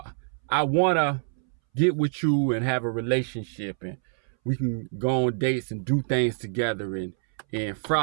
want to get with you and have a relationship, and we can go on dates and do things together and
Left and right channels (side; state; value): left; silent; 61 dB below the other